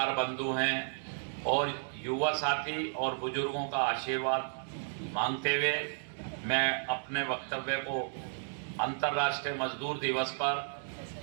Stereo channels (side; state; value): left; silent; digital silence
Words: बंधु हैं और युवा साथी और बुजुर्गों का आशीर्वाद मांगते हुए मैं अपने वक्तव्य को अंतर्राष्ट्रीय मजदूर दिवस पर